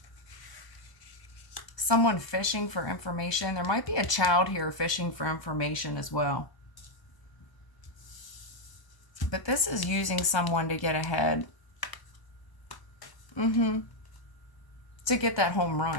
Someone fishing for information. There might be a child here fishing for information as well. But this is using someone to get ahead. To get that home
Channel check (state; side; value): late; right; 1.0 ms